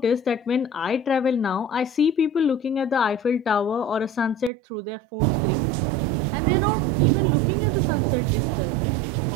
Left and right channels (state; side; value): drops out; left; at 4.5 s